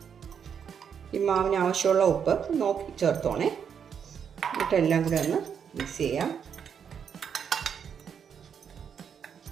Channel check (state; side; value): quieter; left; 7.5 dB